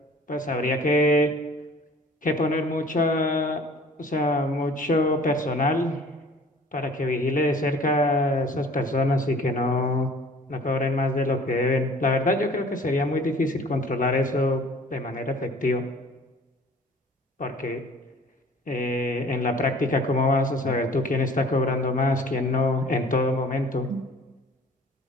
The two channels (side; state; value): both; normal; correlation 0.50